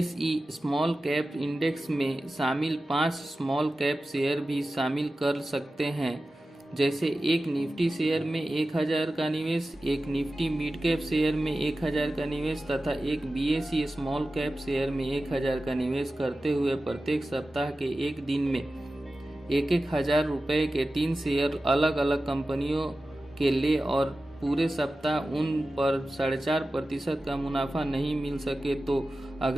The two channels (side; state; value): both; normal; correlation 0.94